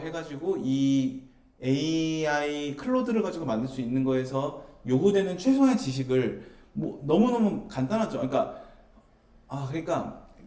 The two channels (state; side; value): identical; both; correlation 1.00